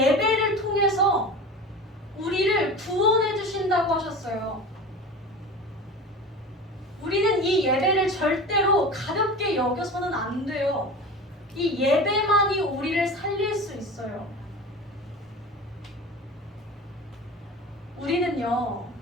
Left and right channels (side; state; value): both; normal; correlation 0.33